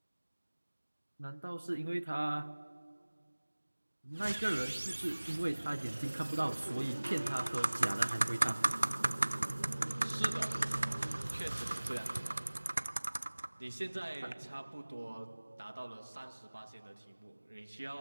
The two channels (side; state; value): both; inverted; correlation -1.00